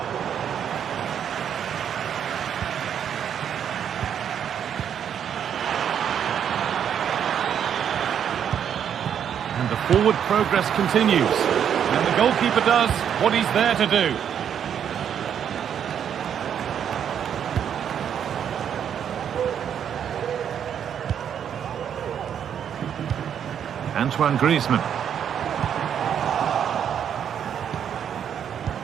Forward progress continues. And the goalkeeper does what he's there to do. Antoine Griezmann.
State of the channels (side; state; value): left; quieter; 8.7 dB